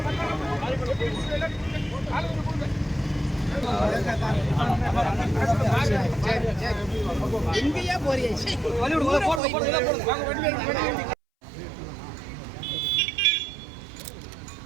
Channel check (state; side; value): drops out; left; at 9.4 s